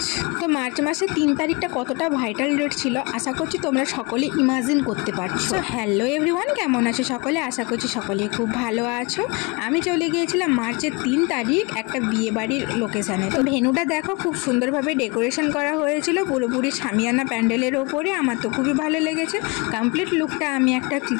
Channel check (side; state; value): right; quieter; 28.3 dB